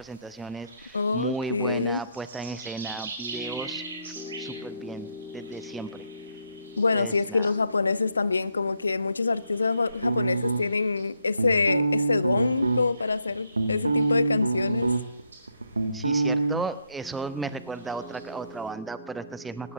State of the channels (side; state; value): both; inverted; correlation -0.74